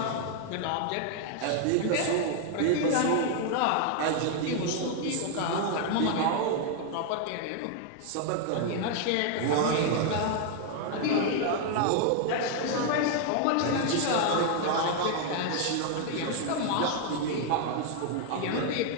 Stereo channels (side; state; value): both; different; correlation 0.00